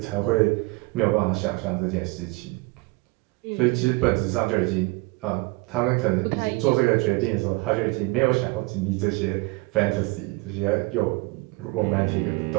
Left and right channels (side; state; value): left; quieter; 24.8 dB